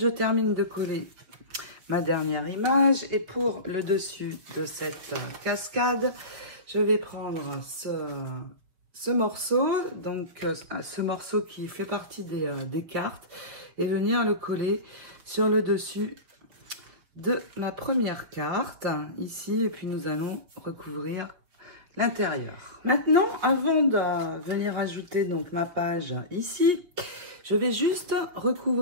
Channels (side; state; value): left; late; 5.6 ms